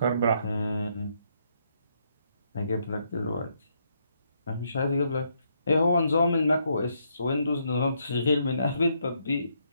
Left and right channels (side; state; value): both; inverted; correlation -0.75